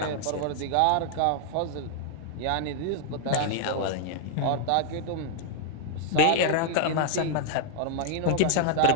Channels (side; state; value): both; different; correlation 0.00